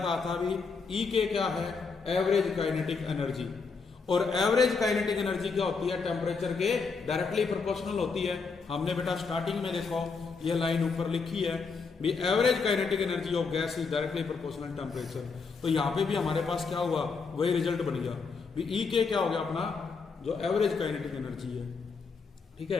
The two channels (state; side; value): quieter; right; 4.8 dB